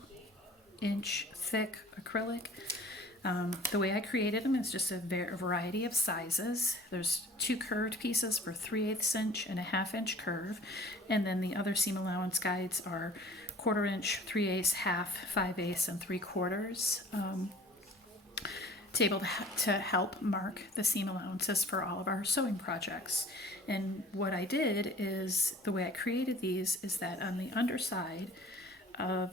inch thick acrylic. The way I created them is just a variety of sizes. There's 2 curved pieces for 3/8 inch and a 1/2 inch curve. And then the other seam allowance guides are 1/4 inch, 3/8, 1/2, 5/8, and 3/4. Able to help mark the seam allowances for all of our sewing projects. And what I did is, the way I created these is that on the underside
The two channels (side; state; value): both; normal; correlation 0.49